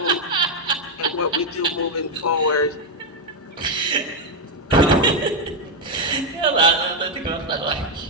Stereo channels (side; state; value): both; normal; correlation 0.01